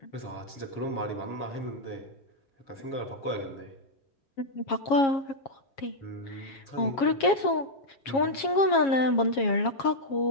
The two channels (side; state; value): right; late; 7.3 ms